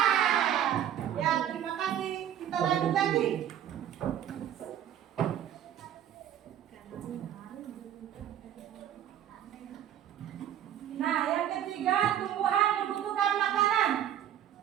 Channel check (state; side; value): quieter; left; 10.6 dB